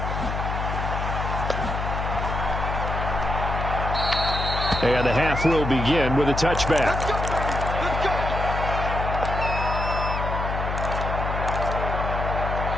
And the half will begin with a touchback.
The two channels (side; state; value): left; noise; hum, 3 dB below the sound